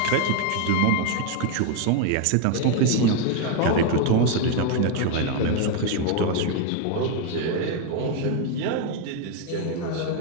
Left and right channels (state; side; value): different; both; correlation 0.01